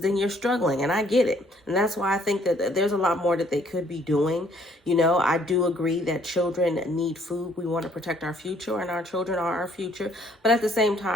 you're struggling. And I get it. And that's why I think that there's a lot more that they could be doing. I do agree that children need food. We want to protect our future, and our children are our future. But at the same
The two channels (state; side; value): normal; both; correlation 0.64